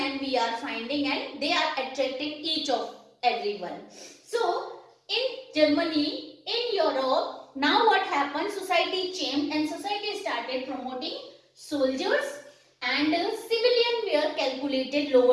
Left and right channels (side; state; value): both; identical; correlation 1.00